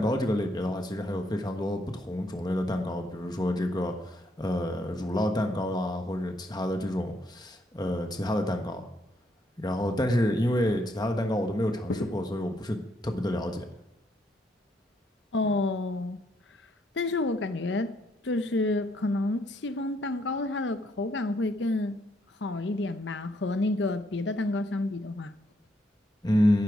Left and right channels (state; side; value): normal; both; correlation 0.73